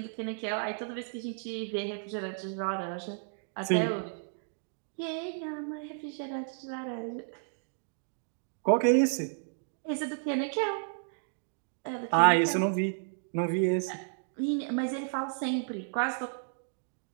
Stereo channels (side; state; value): left; silent; digital silence